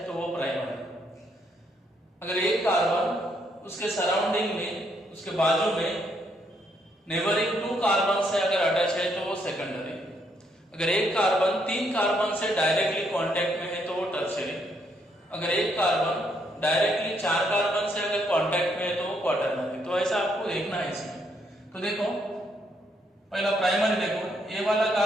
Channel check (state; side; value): normal; both; correlation 0.73